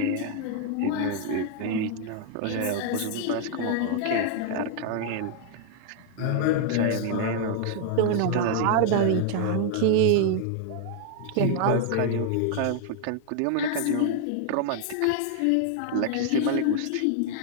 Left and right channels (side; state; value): both; different; correlation 0.00